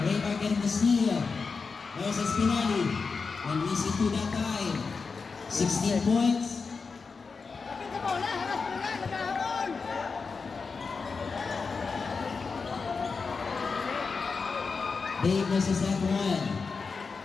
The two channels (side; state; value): right; quieter; 4.8 dB